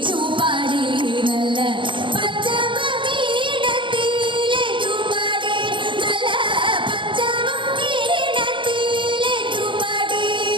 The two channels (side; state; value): left; late; 0.24 ms